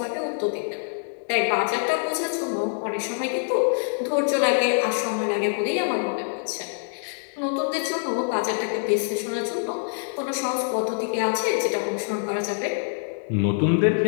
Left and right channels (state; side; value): silent; right; digital silence